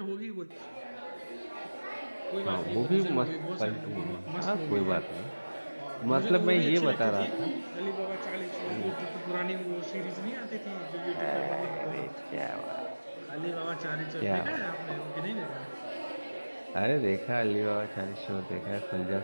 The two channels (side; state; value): both; inverted; correlation -1.00